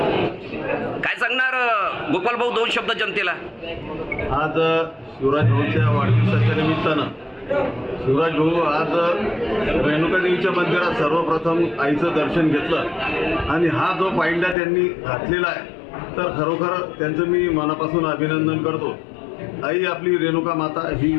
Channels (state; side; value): drops out; right; at 14.6 s